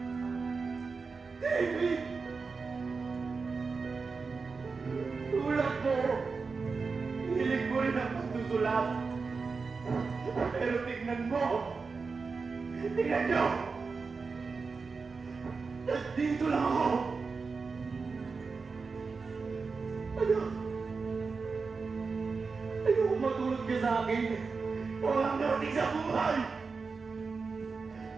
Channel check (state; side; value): quieter; left; 4.6 dB